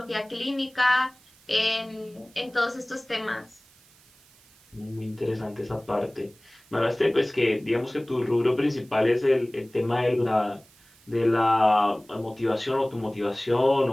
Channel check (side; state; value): right; noise; hiss, 28 dB below the sound